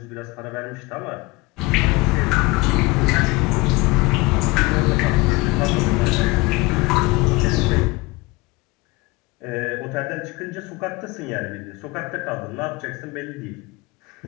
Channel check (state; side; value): quieter; right; 23.1 dB